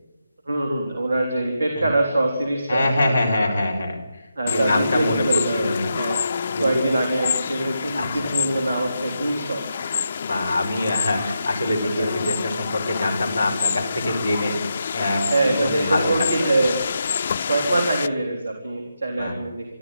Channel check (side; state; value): both; inverted; correlation -0.85